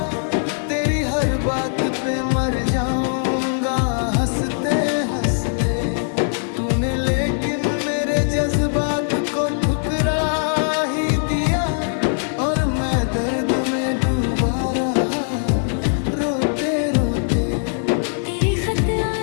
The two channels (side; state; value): right; silent; digital silence